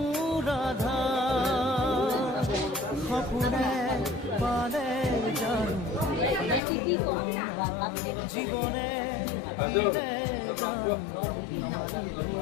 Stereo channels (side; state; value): right; drops out; at 6.6 s